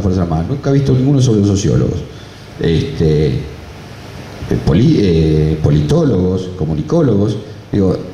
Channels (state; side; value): identical; both; correlation 1.00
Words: Fuerzas Armadas. Nunca he visto ninguno sobre los sociólogos. Politólogos, comunicólogos. Digo,